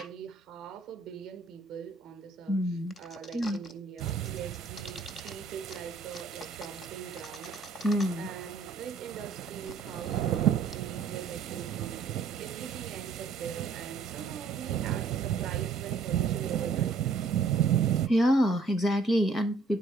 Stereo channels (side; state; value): left; quieter; 4.1 dB